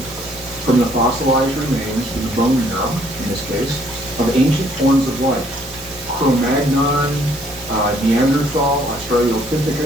from the fossilized remains in the bone marrow, in this case, of ancient forms of life. Cro-Magnon, Neanderthal,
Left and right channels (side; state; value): right; noise; hiss, 19 dB below the sound